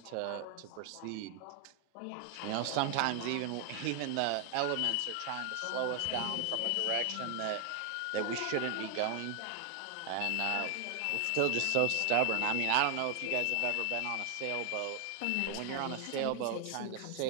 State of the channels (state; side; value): different; both; correlation 0.00